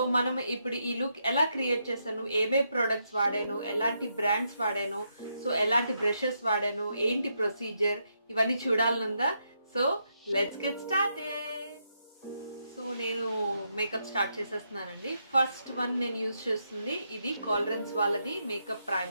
మనం ఇప్పుడు ఈ లుక్ ఎలా క్రియేట్ చేశాను, ఏవే ప్రొడక్ట్స్ వాడాను, ఎలాంటి బ్రాండ్స్ వాడాను, సో ఎలాంటి బ్రషెస్ వాడాను, ఏంటి ప్రొసీజర్, ఇవన్నీ చూడాలనుందా? So let's get started. So నేను మేకప్ స్టార్ట్ చేసేస్తున్నానండి. ఫస్ట్ వన్ నేను యూజ్ చేస్తుంది ఇది కాలరెన్స్ వాళ్ళది మేకప్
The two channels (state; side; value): inverted; both; correlation -0.80